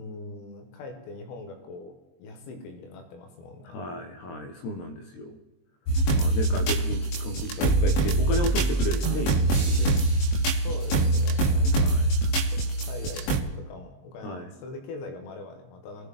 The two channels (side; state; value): right; late; 23 ms